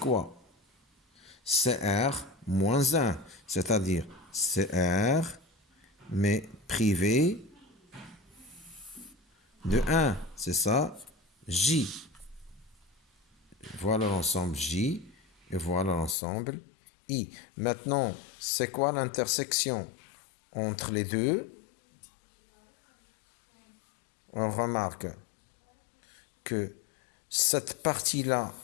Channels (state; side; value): drops out; right; at 16.2 s